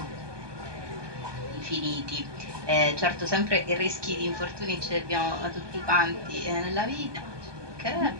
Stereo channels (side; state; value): left; late; 1.2 ms